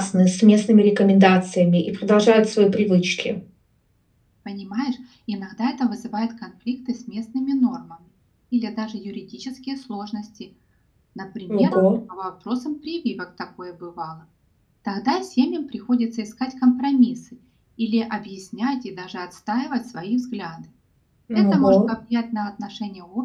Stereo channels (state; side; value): identical; both; correlation 1.00